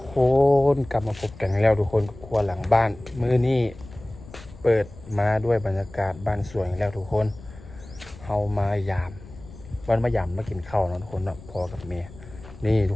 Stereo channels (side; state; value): left; noise; rumble, 18 dB below the sound